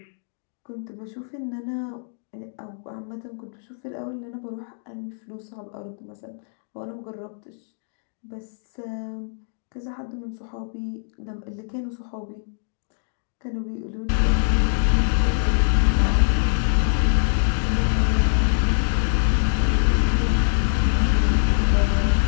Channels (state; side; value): silent; right; digital silence